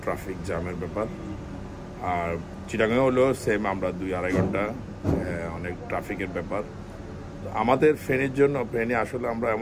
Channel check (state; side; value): identical; both; correlation 1.00